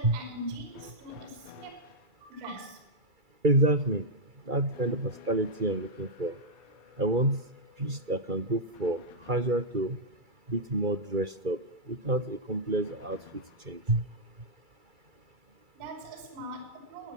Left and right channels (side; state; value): left; late; 2.3 ms